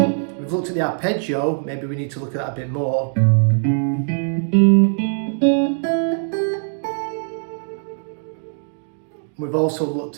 we've looked at the arpeggio, maybe we need to look at that a bit more. We've also looked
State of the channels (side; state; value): left; silent; digital silence